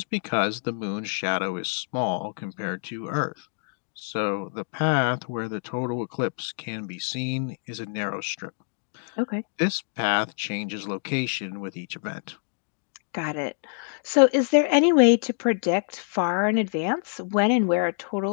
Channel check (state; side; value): silent; right; digital silence